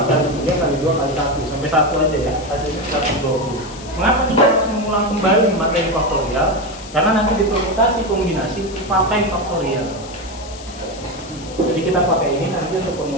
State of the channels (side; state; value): left; noise; hiss, 17 dB below the sound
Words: kali 3 kali 2 kali 1 sampai 1 aja ya, hasilnya 120. Mengapa kita harus mengulang kembali materi faktorial? Karena nanti di permutasi kombinasi pakai faktorial. Jadi kita pakai ini nanti untuk